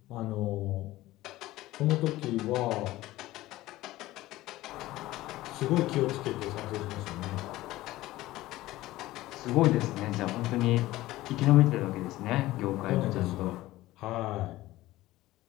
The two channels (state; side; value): quieter; right; 17.0 dB